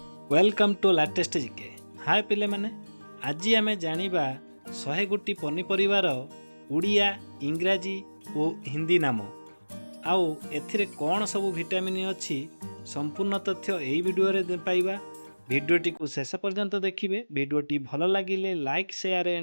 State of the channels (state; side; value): inverted; both; correlation -1.00